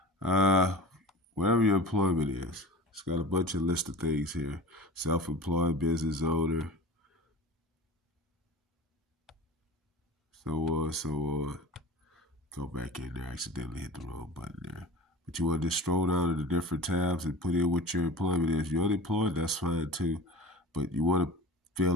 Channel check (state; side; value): normal; both; correlation 0.35